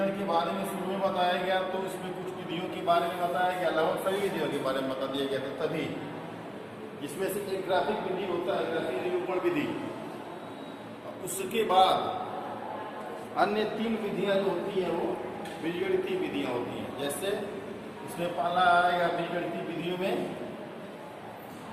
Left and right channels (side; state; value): both; identical; correlation 1.00